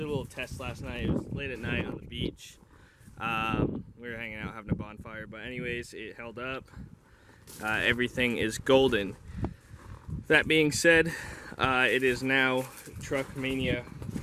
a little test last night. It was late at night on the beach. We were hanging out having a bonfire, but anyways, it held up. Everything is golden. That being said, it is now truck mania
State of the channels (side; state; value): both; identical; correlation 1.00